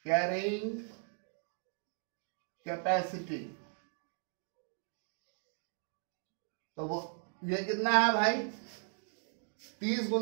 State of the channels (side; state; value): left; silent; 53 dB below the other